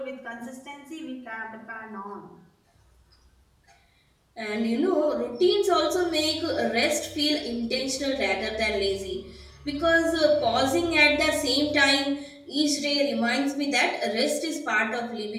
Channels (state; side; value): identical; both; correlation 1.00